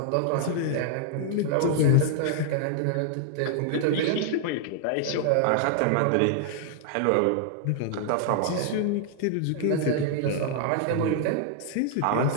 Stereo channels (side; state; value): both; different; correlation -0.01